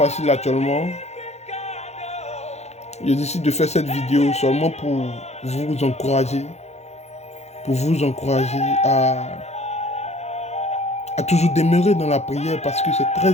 actuellement. Je décide de faire cette vidéo seulement pour vous encourager, à toujours demeurer dans la prière parce que c'est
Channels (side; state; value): right; late; 0.32 ms